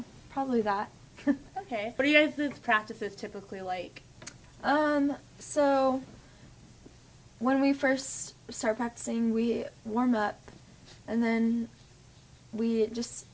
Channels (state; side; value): identical; both; correlation 1.00